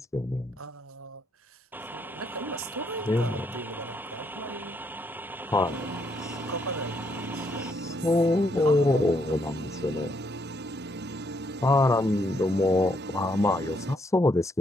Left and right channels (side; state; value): both; normal; correlation 0.74